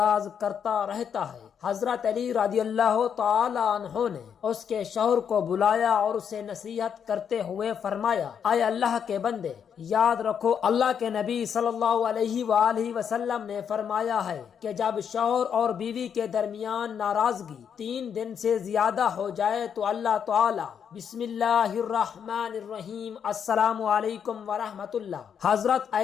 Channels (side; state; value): right; quieter; 7.7 dB